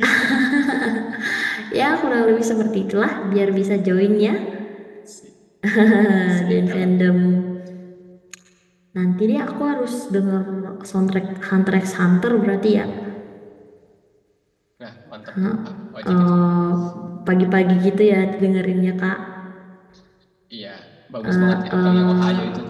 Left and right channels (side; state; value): both; identical; correlation 1.00